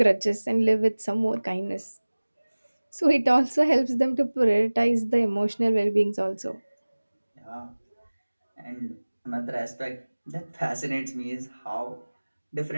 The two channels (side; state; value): both; inverted; correlation -1.00